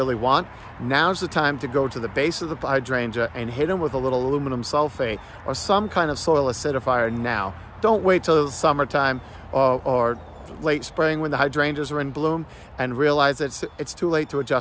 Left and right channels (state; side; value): identical; both; correlation 1.00